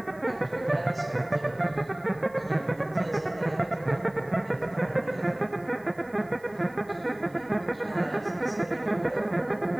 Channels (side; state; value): right; noise; hiss, 29 dB below the sound